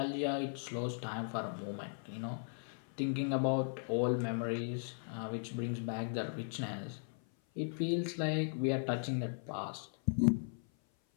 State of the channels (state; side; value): silent; right; 53 dB below the other